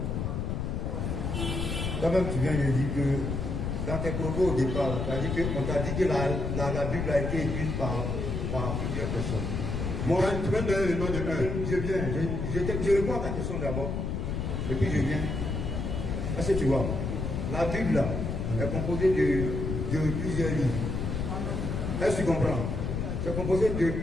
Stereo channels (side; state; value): left; noise; rumble, 2 dB below the sound